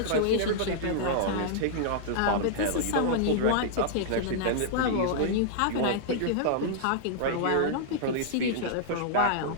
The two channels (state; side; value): different; both; correlation -0.01